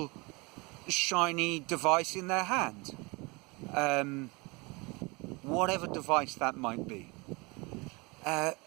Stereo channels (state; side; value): quieter; left; 26.7 dB